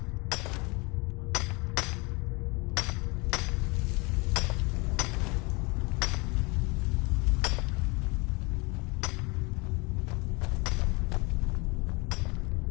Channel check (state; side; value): quieter; right; 27.6 dB